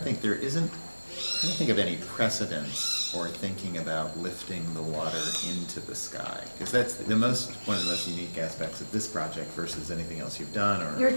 I think there isn't, I don't think of any precedence or thinking about lifting the water into the sky, because that's one of the most unique aspects of this project versus anything else you've done. Or you're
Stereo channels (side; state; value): both; inverted; correlation -1.00